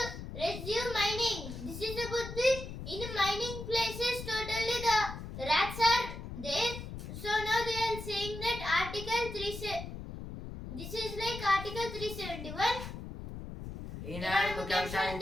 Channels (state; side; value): noise; left; rumble, 9 dB below the sound